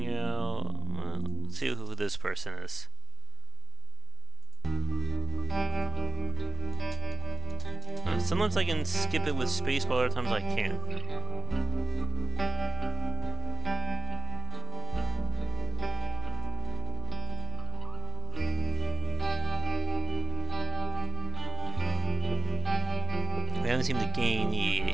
out. Well, let's see who this person is. Sometimes I can skip it with space, but other times I can't. We haven't seemed to gain the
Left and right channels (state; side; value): quieter; left; 3.4 dB